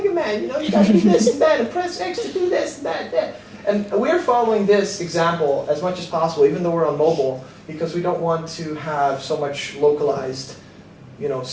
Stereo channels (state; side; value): identical; both; correlation 1.00